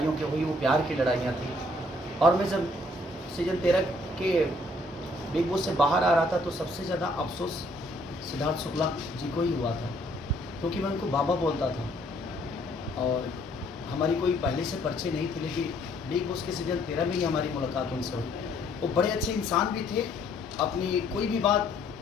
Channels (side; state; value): both; normal; correlation 0.64